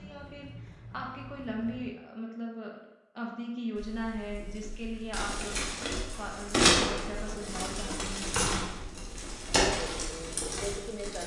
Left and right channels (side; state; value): both; identical; correlation 1.00